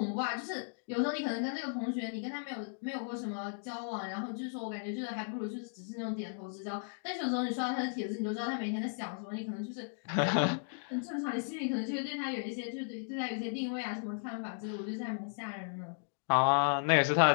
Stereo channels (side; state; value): right; silent; digital silence